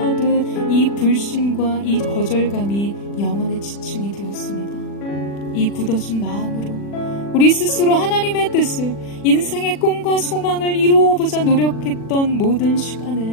이 불신과 이 거절감이 영혼의 지층이 되었습니다. 이 굳어진 마음으로 우리 스스로 하나님의 뜻을, 인생의 꿈과 소망을 이루어보자 노력했던 모든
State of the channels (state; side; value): late; right; 40 ms